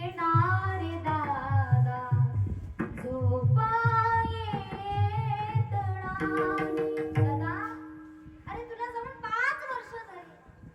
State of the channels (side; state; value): both; identical; correlation 1.00